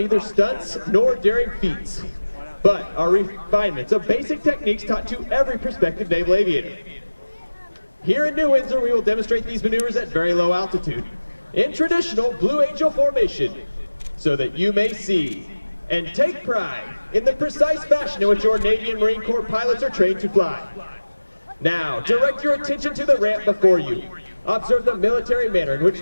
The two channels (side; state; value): both; inverted; correlation -1.00